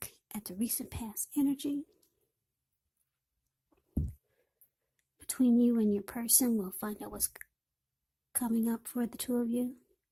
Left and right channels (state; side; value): identical; both; correlation 1.00